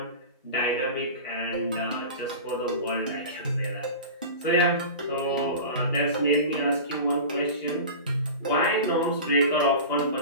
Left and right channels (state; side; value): inverted; both; correlation -0.32